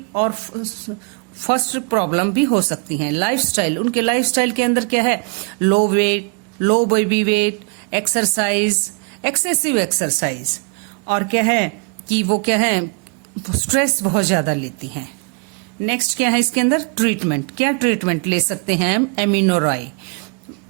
और फर्स्ट प्रॉब्लम भी हो सकती हैं। लाइफस्टाइल, उनके लाइफस्टाइल के अंदर क्या है? Low weight, low baby weight, exercise, excessive exercise, और क्या है कि वो क्या है, स्ट्रेस बहुत ज्यादा लेती हैं। नेक्स्ट क्या है इसके अंदर? ट्रीटमेंट। क्या ट्रीटमेंट ले सकते हैं हम? एमिनोरॉय,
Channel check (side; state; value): left; quieter; 36.1 dB